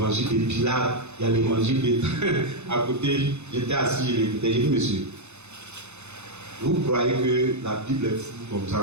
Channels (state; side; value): late; left; 0.82 ms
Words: Pilate, il y a l'évangile de... à côté, j'étais assis, je l'écoutais, j'ai dit, monsieur, vous croyez que la Bible est floue comme